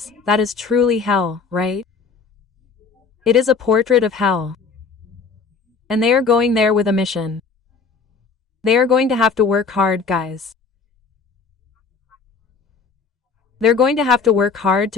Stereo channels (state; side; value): quieter; right; 5.1 dB